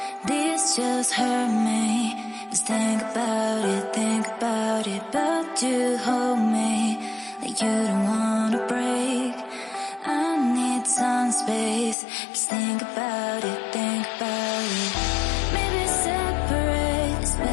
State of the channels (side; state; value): right; drops out; at 12.0 s